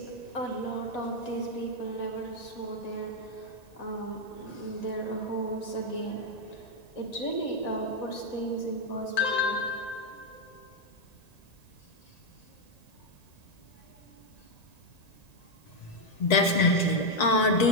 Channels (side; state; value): right; late; 1.9 ms